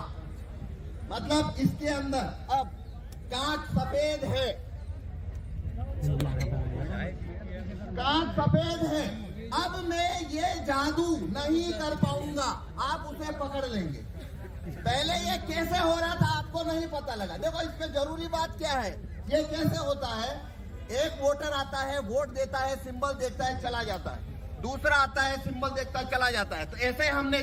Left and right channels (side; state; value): both; identical; correlation 1.00